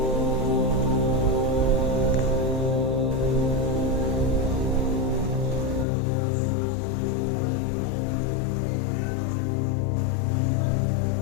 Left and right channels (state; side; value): drops out; right; at 5.9 s